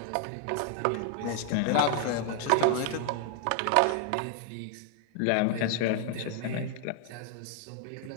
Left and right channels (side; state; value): both; different; correlation 0.00